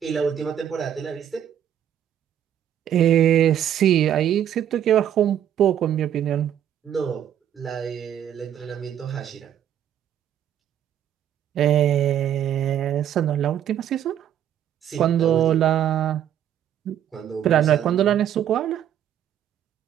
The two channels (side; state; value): left; quieter; 10.1 dB